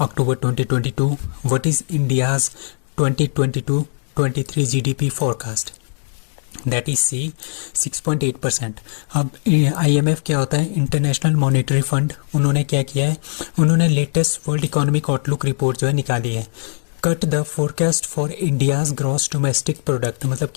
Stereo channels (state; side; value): silent; right; digital silence